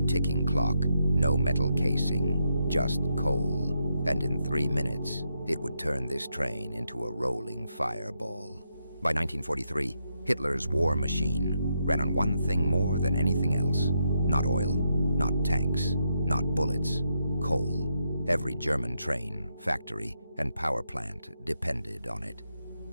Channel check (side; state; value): both; inverted; correlation -0.81